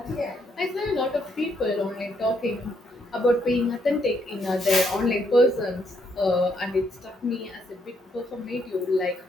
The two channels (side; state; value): both; normal; correlation 0.74